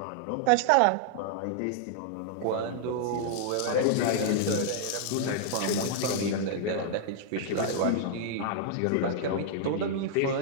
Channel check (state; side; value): different; both; correlation -0.01